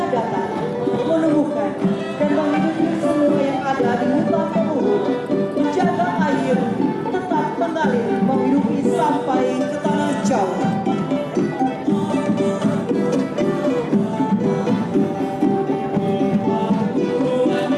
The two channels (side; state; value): both; identical; correlation 1.00